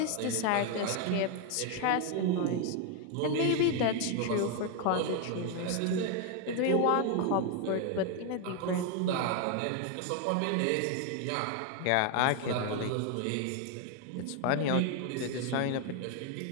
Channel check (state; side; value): different; both; correlation 0.01